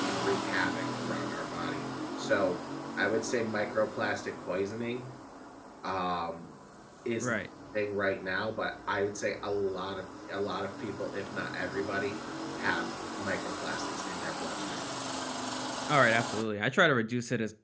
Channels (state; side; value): identical; both; correlation 1.00